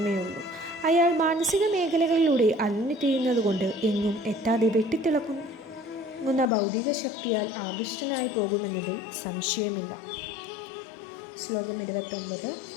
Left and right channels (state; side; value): drops out; right; at 6.5 s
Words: ഉള്ളൂ. അയാൾ മാനസിക മേഖലകളിലൂടെ അലഞ്ഞു തിരിയുന്നതുകൊണ്ട് എങ്ങും എത്താതെ വെട്ടിത്തിളങ്ങുന്ന ഭൗതിക ശക്തിയാൽ ആകൃഷ്ടനായി പോകുമെന്നതിൽ സംശയമില്ല. ശ്ലോകം 29.